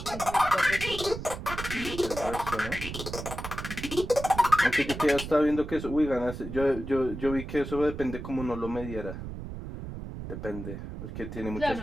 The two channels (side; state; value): right; noise; rumble, 8 dB below the sound